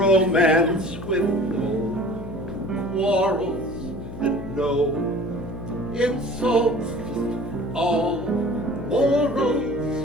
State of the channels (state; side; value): noise; left; hum, 11 dB below the sound